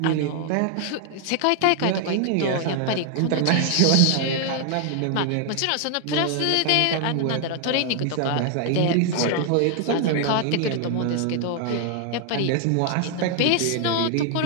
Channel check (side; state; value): both; different; correlation 0.00